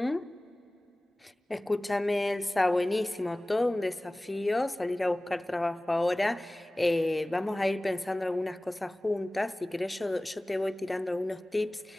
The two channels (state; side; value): normal; both; correlation 0.98